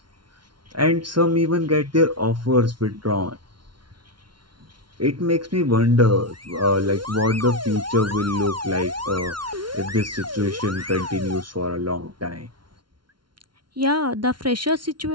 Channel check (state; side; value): late; left; 0.72 ms